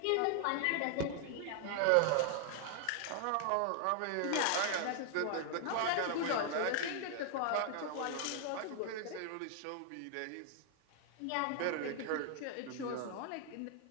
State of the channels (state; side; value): different; both; correlation 0.00